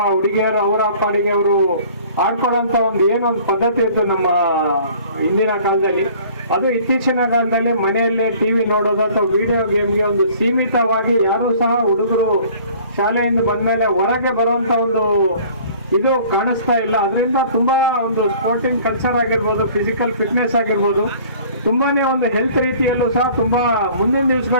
ಹುಡುಗಿಯರು ಅವರ ಪಾಡಿಗೆ ಅವರು ಆಡ್ಕೊಳ್ಳೋಂಥ ಒಂದು ಏನೊಂದು ಪದ್ಧತಿ ಇತ್ತು ನಮ್ಮ ಹಿಂದಿನ ಕಾಲದಲ್ಲಿ. ಅದು ಇತ್ತೀಚಿನ ಕಾಲದಲ್ಲಿ ಮನೆಯಲ್ಲೇ ಟಿವಿ ನೋಡೋದು ಅಥವಾ ವಿಡಿಯೋ ಗೇಮ್ಗೆ ಒಂದು ಸೀಮಿತವಾಗಿ ಯಾರೂ ಸಹ ಹುಡುಗರು ಶಾಲೆಯಿಂದ ಬಂದಮೇಲೆ ಹೊರಗೆ ಬರುವಂಥ ಒಂದು ಇದು ಕಾಣಿಸ್ತಾ ಇಲ್ಲ. ಅದರಿಂದ ತುಂಬಾ ಒಂದು ಸ್ಪೋರ್ಟಿಂಗ್ ಕಲ್ಚರ್ ಆಗಿರ್ಬೋದು, ಫಿಸಿಕಲ್ ಫಿಟ್ನೆಸ್ ಆಗಿರ್ಬೋದು, ತುಂಬಾನೇ ಒಂದು ಹೆಲ್ತ್ ರೀತಿಯಲ್ಲೂ ಸಹ ತುಂಬಾ ಮುಂದಿನ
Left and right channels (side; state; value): both; inverted; correlation -0.51